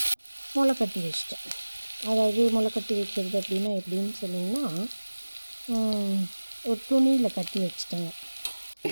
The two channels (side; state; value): both; inverted; correlation -1.00